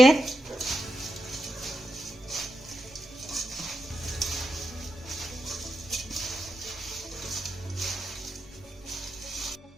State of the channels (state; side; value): normal; both; correlation 0.87